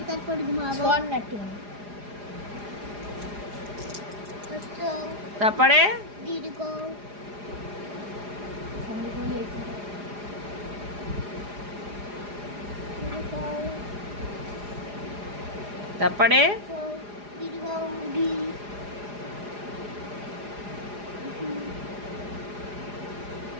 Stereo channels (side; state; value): left; late; 4.9 ms